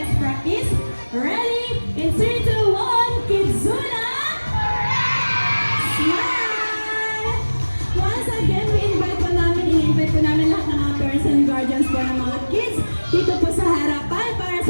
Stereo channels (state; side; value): inverted; both; correlation -1.00